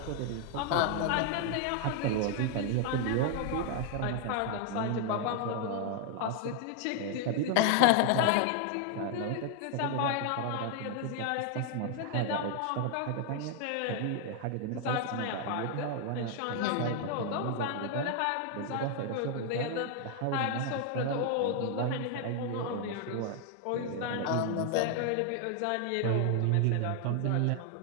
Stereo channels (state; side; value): different; both; correlation 0.00